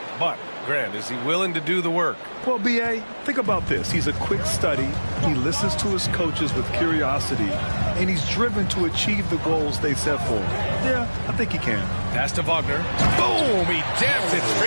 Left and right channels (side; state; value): both; inverted; correlation -1.00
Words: But, Grant, is he willing to do the work? Well, B.A., think about this. He's a quick study. He listens to his coaches with curiosity. And he's driven to achieve the goals they set for him. Yeah, I think he can. Pass to Wagner. Boom! He jams it